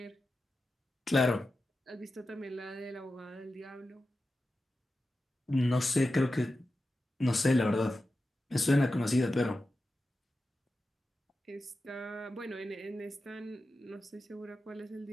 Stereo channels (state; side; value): normal; both; correlation 0.92